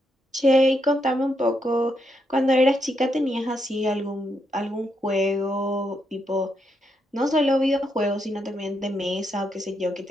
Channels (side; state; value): both; normal; correlation 0.80